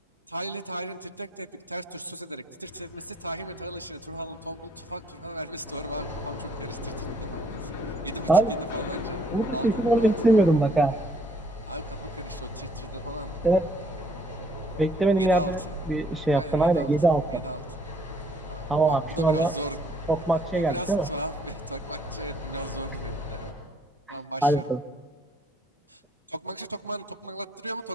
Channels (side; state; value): both; normal; correlation 0.65